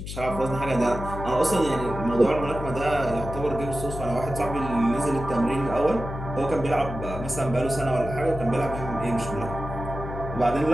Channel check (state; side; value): noise; left; hum, 8 dB below the sound